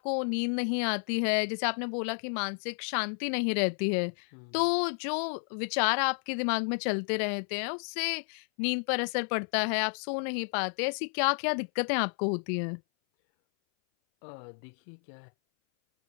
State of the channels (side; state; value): right; silent; 57 dB below the other